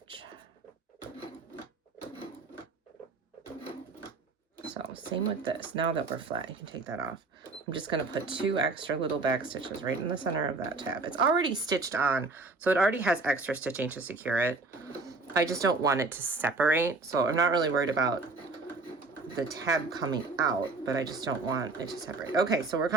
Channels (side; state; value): left; quieter; 3.7 dB